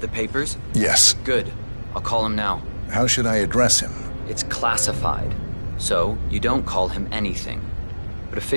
the papers? Yes. Good. I'll call him now. How should I address him? It's classified, so you don't call him anything. But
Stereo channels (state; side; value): inverted; both; correlation -1.00